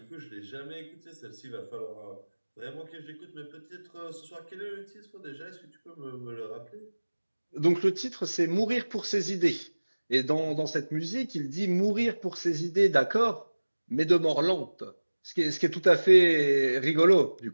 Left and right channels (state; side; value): inverted; both; correlation -1.00